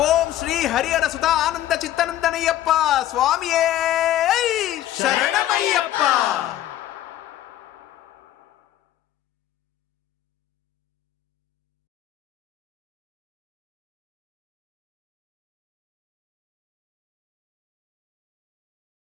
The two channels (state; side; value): quieter; right; 13.1 dB